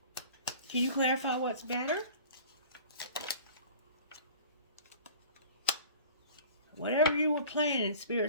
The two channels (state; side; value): inverted; both; correlation -0.43